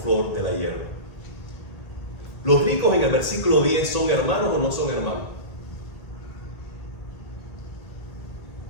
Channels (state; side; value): late; right; 1.8 ms